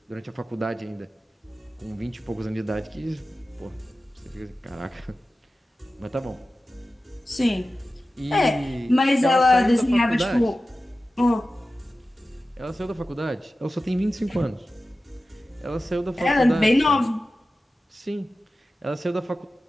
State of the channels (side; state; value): both; normal; correlation 0.94